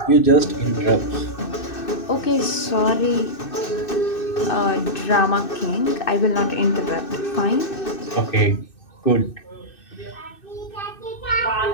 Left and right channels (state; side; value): late; right; 2.6 ms